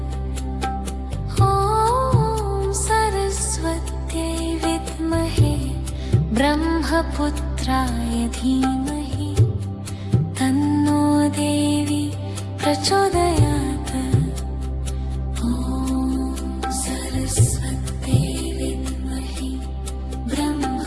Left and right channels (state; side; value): identical; both; correlation 1.00